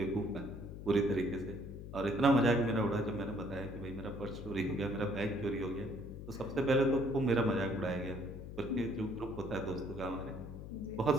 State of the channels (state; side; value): noise; left; hum, 10 dB below the sound